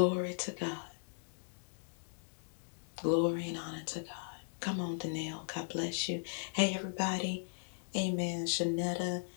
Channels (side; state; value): right; silent; digital silence